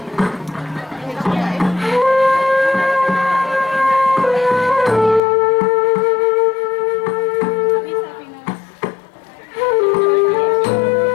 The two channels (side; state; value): right; drops out; at 5.2 s